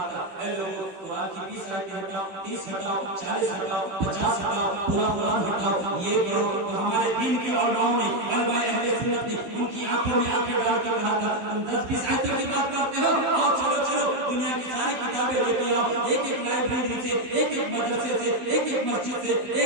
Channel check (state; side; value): late; left; 15 ms